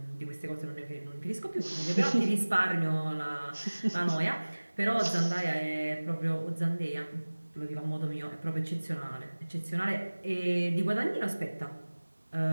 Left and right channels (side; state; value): both; inverted; correlation -1.00